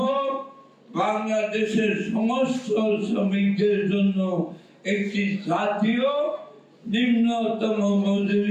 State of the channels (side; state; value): both; identical; correlation 1.00